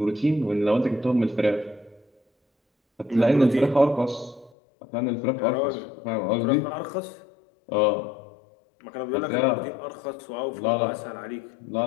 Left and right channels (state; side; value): drops out; right; at 4.5 s